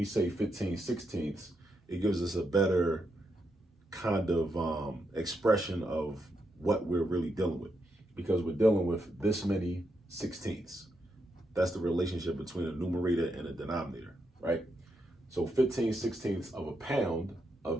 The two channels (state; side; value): normal; both; correlation 0.82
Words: say 15 sixteenths, it gives us a better kind of expression of what we're really dealing with, because we're dealing with this many sixteenths. That's the relationship between a numerator and a denominator, right? So 15 sixteenths of a pound